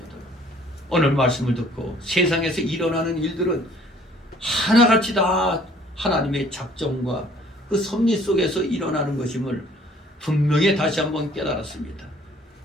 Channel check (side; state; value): both; normal; correlation 0.57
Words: 오늘 말씀을 듣고 세상에서 일어나는 일들은 하나같이 다 하나님의 작정과 그 섭리 속에서 일어나는 것임을 분명히 다시 한번 깨달았습니다.